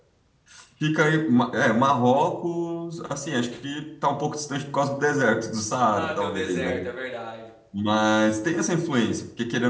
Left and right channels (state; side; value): identical; both; correlation 1.00